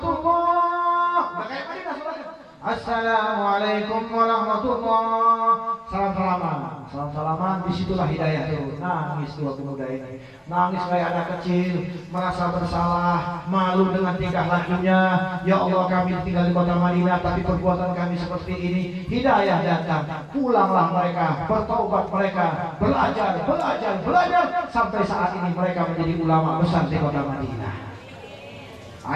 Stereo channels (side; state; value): both; identical; correlation 1.00